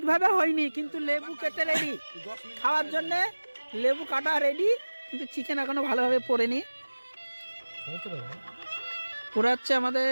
হয়নি, কিন্তু লেবু কেটে রেডি খাওয়ার জন্য, লেবু কাটা রেডি, কিন্তু চিকেন এখনো ভালোভাবে পড়েনি। পুরো হচ্ছে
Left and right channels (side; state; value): both; inverted; correlation -1.00